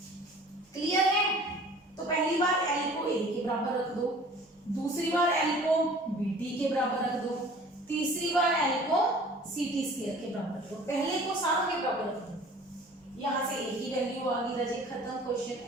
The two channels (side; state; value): both; normal; correlation 0.48